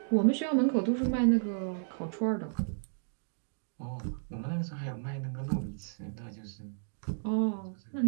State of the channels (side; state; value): left; silent; digital silence